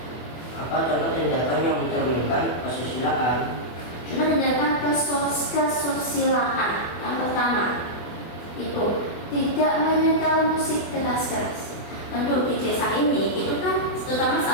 Apa contoh tindakan yang mencerminkan kesusilaan? Contoh tindakan kesusilaan yang pertama itu tidak menyetel musik keras-keras. Tentu di desa ini itu kan terutama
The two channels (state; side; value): late; right; 24 ms